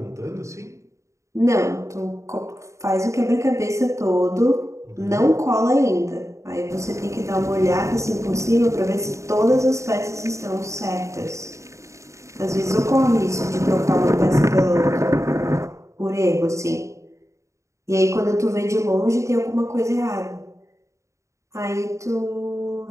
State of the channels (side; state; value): left; late; 0.14 ms